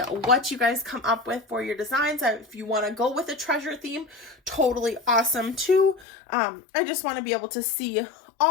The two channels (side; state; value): right; drops out; at 6.1 s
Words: you guys come up with for your designs. If you want to go with a treasure theme, totally awesome too. I just want to be able to see